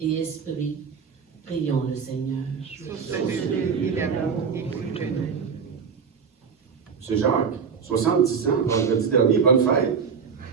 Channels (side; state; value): left; quieter; 6.2 dB